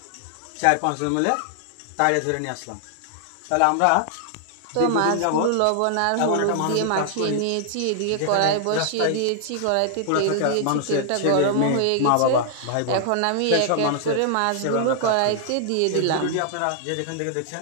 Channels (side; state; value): both; different; correlation -0.01